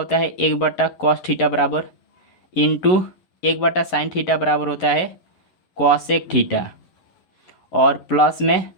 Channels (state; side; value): late; right; 11 ms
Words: है 1/cos थीटा बराबर इंटू 1/sin थीटा बराबर होता है कॉसेक थीटा और प्लस में